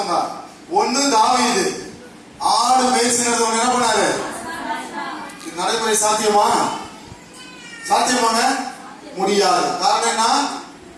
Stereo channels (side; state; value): both; identical; correlation 1.00